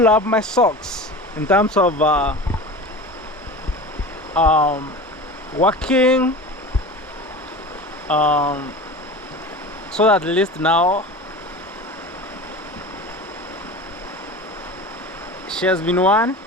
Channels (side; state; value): both; normal; correlation 0.33